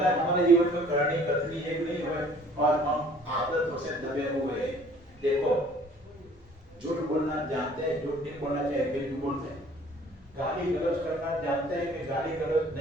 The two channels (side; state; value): both; normal; correlation 0.54